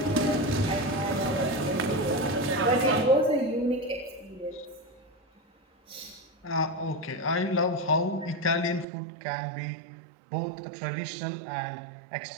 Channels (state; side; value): drops out; left; at 8.8 s